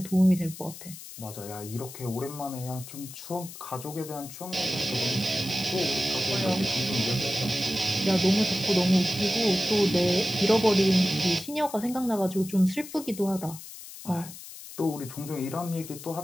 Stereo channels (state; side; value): noise; left; hiss, 14 dB below the sound